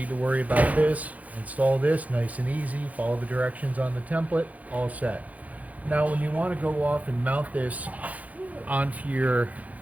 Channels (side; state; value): left; late; 0.074 ms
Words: to worry about this. Install this nice and easy. Follow the directions on the template. All set. Now when you want to go off and mount this onto your